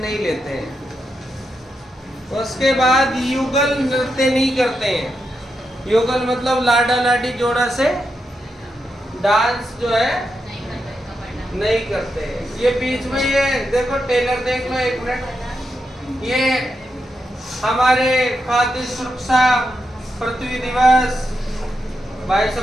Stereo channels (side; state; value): both; normal; correlation 0.85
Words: नहीं लेते हैं। उसके बाद युगल नृत्य नहीं करते हैं। युगल मतलब लाडा लाडी जोड़ा से डांस जो है नहीं करते हैं। ये बीच में ये देखो टेलर, देख लो एक मिनट, ये हमारे खाद्य सुरक्षा पृथ्वी दिवस भाई